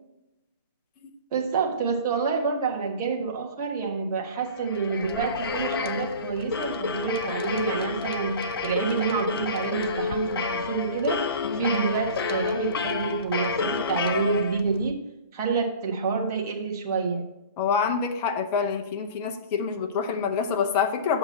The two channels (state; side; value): inverted; both; correlation -0.38